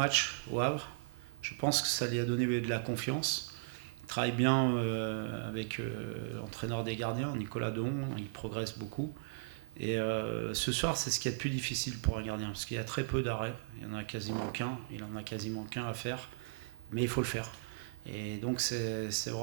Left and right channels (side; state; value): left; silent; digital silence